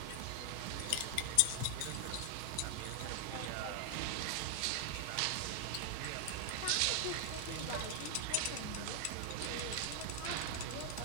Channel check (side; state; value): both; different; correlation 0.00